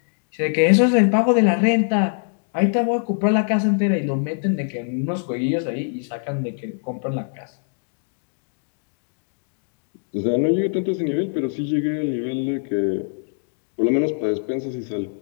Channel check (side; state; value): right; silent; digital silence